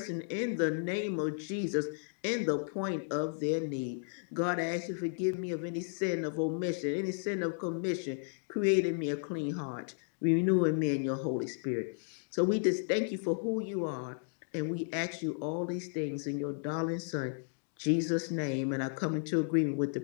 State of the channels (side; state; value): right; silent; digital silence